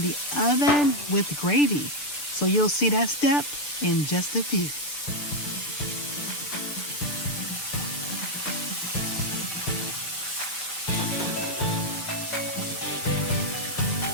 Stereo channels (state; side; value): late; right; 7.0 ms